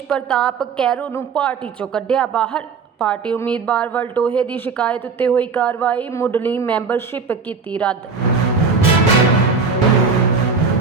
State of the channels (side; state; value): left; quieter; 5.0 dB